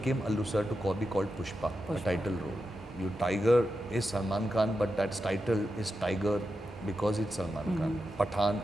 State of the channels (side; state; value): both; normal; correlation 0.88